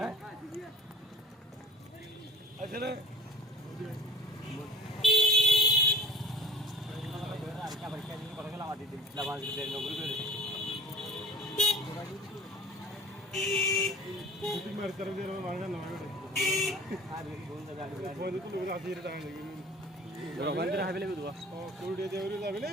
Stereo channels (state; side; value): normal; both; correlation 0.44